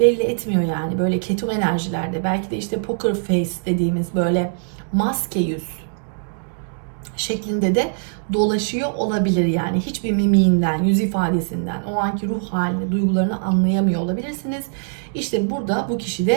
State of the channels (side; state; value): left; silent; digital silence